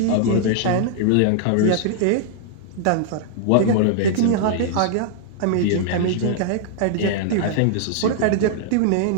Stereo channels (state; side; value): different; both; correlation -0.01